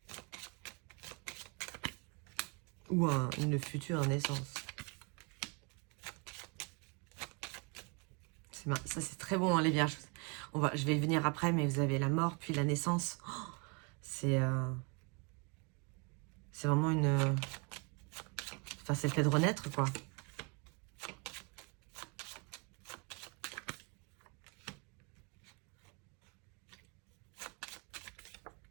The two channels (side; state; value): left; quieter; 33.3 dB